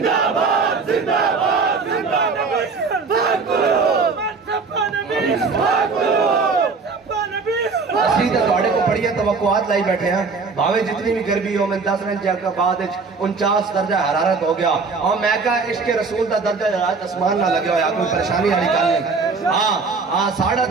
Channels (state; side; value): quieter; left; 4.5 dB